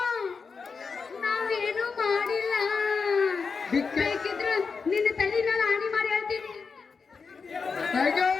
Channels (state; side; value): quieter; right; 5.1 dB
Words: ನಾವೇನು ಮಾಡಿಲ್ಲ ಬೇಕಿದ್ರೆ ನಿನ್ನ ತಲೆ ನಾನು ಹಾನಿ ಮಾಡಿ ಹೇಳ್ತೀನಿ